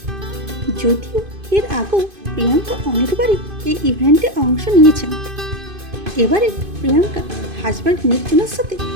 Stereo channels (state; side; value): late; left; 2.5 ms